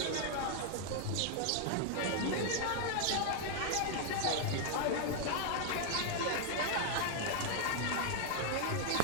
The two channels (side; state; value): both; different; correlation 0.00